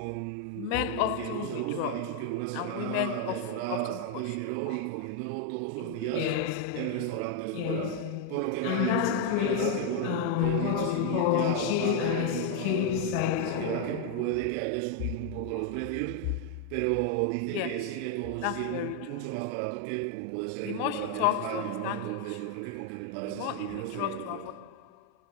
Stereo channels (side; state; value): both; different; correlation 0.01